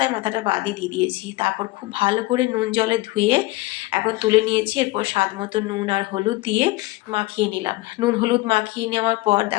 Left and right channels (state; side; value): quieter; right; 20.6 dB